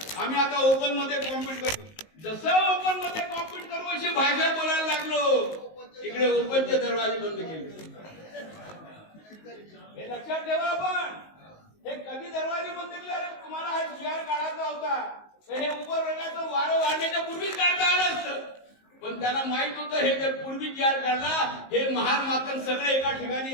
आम्ही आता ओपन मध्ये कॉम्पिट करू. जसं ओपन मध्ये कॉम्पिट करू अशी भाषा बोलायला लागलो, तिकडे ओपनचे दरवाजे बंद केले. हे लक्षात ठेवा. आपण हे कधी दरवाजे बंद केले? अरे तुम्हाला हा जीआर काढायचा होता, तर हे उपवर्गाचं वारं वाढण्याच्या पूर्वीच काढता आलं असतं. पण त्यांना माहित होतं हे जर पूर्वी जीआर काढला, हे महार मातन सगळे एका ठिकाणी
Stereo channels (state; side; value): late; right; 19 ms